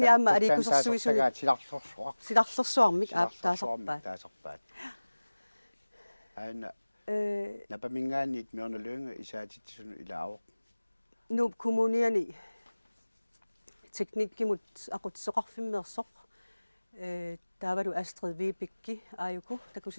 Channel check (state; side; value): inverted; both; correlation -1.00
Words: alikusersuisu silarlersuarmik taasarpaat. Aina napamingaanit Mørne Lynge isaatitsun ilaavaq. Nuup kommuniani teknikkimut aqutsoqarfimmeersoq taavalu Astrid Vibekki ajuku